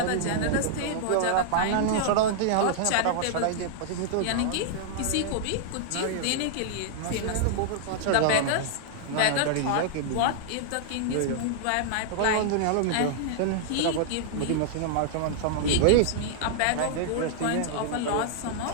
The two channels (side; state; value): both; different; correlation -0.01